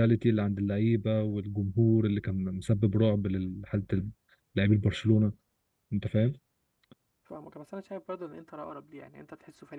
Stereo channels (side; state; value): both; identical; correlation 1.00